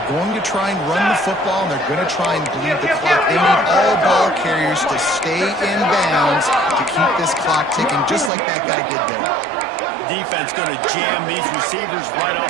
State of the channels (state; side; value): drops out; left; at 8.3 s